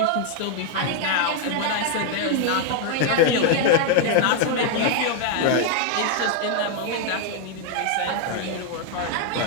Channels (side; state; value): both; different; correlation 0.00